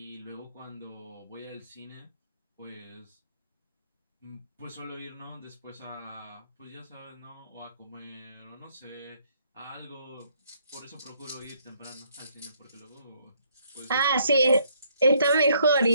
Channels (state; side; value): inverted; both; correlation -0.68